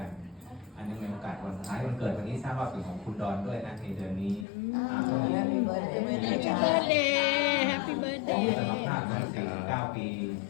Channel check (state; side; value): drops out; right; at 4.5 s